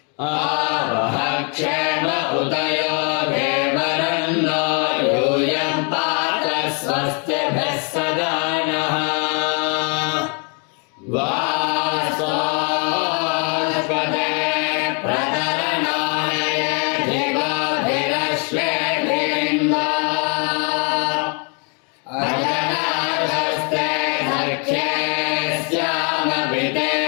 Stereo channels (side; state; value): right; quieter; 36.9 dB